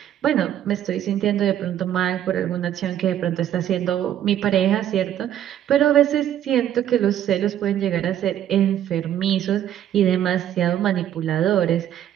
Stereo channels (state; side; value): quieter; left; 10.9 dB